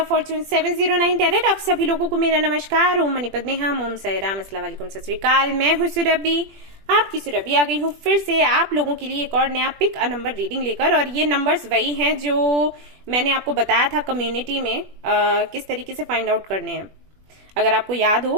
fortune 709 tarot. आप सभी लोगों को मेरा नमस्कार। ओम मणिपत में हम ओम साई राम, अस्सलाम वालेकुम, सत श्री अकाल। मैं हूं सुरभि, आपकी सुरभि आ गई हूं फिर से आप लोगों के लिए एक और नया पिक अ नंबर रीडिंग लेकर। और ये नंबर्स वही हैं जो मैंने आपको बताया था कम्युनिटी में किस तरीके से फाइंड आउट करने हैं। अगर आपको याद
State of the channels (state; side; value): late; left; 21 ms